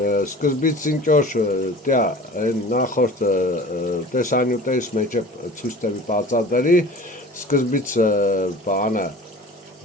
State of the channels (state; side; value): normal; both; correlation 0.41